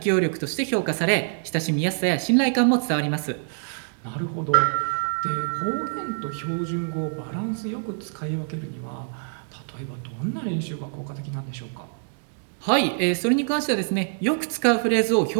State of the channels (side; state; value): left; silent; digital silence